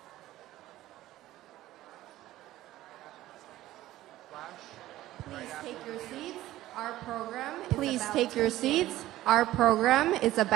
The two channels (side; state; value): left; quieter; 15.3 dB